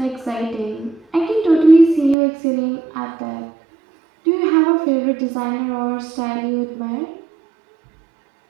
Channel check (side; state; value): left; drops out; at 2.1 s